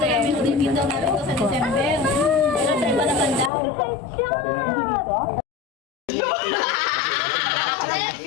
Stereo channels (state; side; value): drops out; right; at 3.5 s